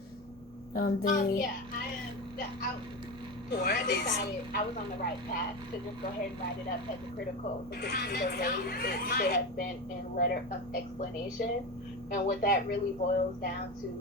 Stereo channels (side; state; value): both; normal; correlation 0.21